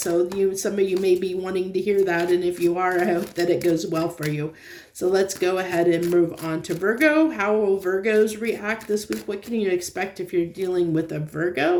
some of you may be wanting to hear that, and if you are, I hope that it goes well for you. So let's go ahead and move on to Virgo. How will Virgos react this week? What can you expect if you're dealing with a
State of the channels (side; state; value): both; identical; correlation 1.00